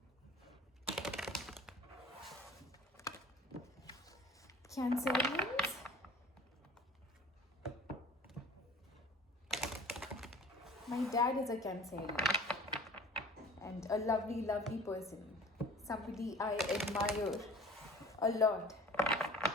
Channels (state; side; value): normal; both; correlation 0.44